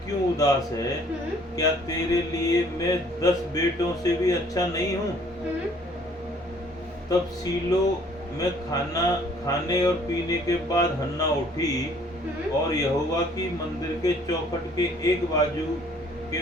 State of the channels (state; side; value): normal; both; correlation 0.58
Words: क्यों उदास है? क्या तेरे लिए मैं 10 बेटों से भी अच्छा नहीं हूँ? तब सीलो में खाने और पीने के बाद हन्ना उठी और यहोवा की मंदिर के चौखट के एक बाजू के